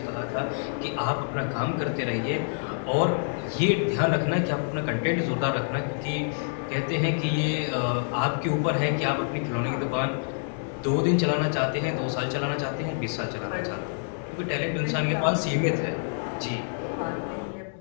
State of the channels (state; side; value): silent; right; digital silence